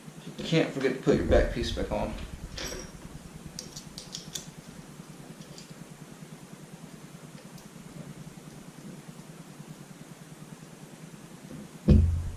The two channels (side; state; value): both; identical; correlation 1.00